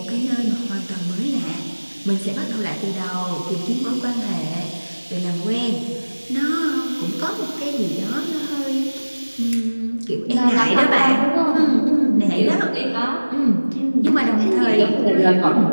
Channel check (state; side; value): inverted; both; correlation -1.00